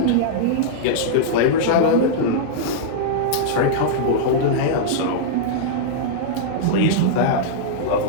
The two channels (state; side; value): different; both; correlation -0.02